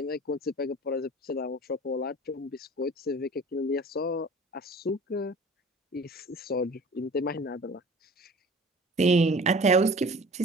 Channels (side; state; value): both; normal; correlation 0.43